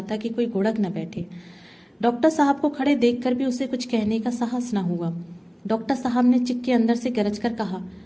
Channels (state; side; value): identical; both; correlation 1.00